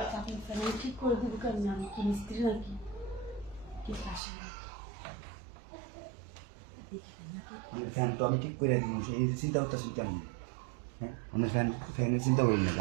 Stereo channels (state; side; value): drops out; left; at 4.2 s